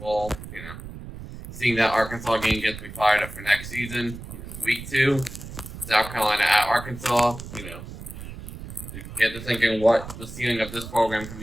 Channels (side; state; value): right; noise; rumble, 12 dB below the sound